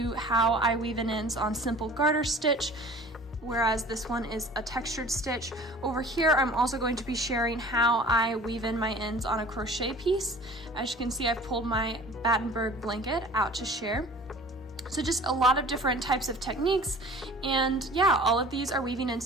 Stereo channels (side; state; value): both; normal; correlation 0.45